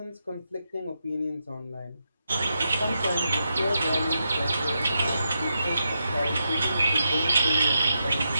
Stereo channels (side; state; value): both; inverted; correlation -0.85